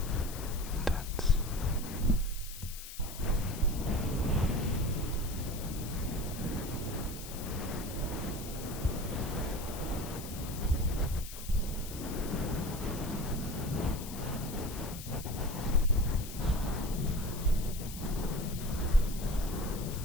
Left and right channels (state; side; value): noise; left; hiss, 11 dB below the sound